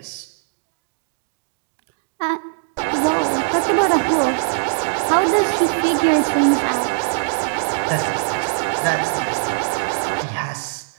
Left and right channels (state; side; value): silent; left; digital silence